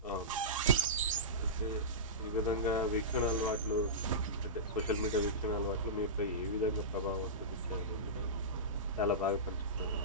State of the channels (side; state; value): both; normal; correlation -0.19